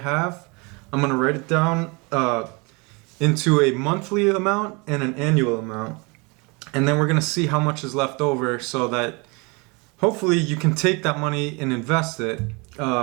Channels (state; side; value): quieter; left; 29.0 dB